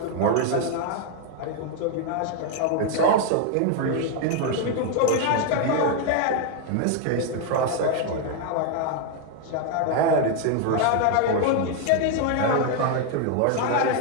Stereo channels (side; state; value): both; different; correlation 0.00